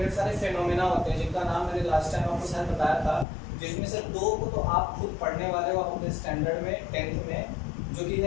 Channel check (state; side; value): drops out; right; at 3.2 s